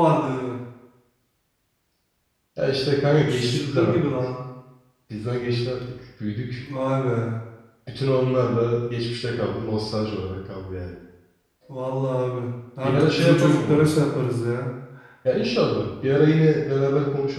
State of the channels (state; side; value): identical; both; correlation 1.00